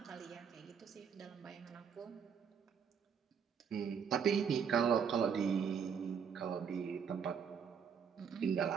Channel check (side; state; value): left; quieter; 7.0 dB